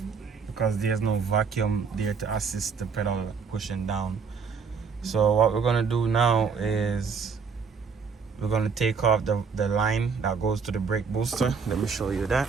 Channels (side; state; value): left; quieter; 5.6 dB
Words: because there's no vacuum there to assist the pedal pushing down. So what we're gonna do now is we're gonna take off the line that goes to the brake booster. Let me show you that.